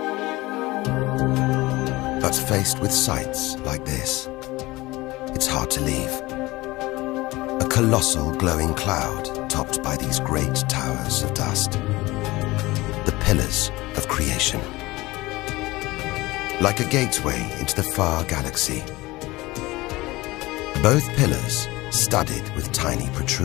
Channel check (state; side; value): quieter; right; 20.3 dB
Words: But faced with sights like this, it's hard to leave. A colossal glowing cloud topped by these great towers of dust. The pillars of creation. Like a gateway into the far galaxy. Both pillars studded with tiny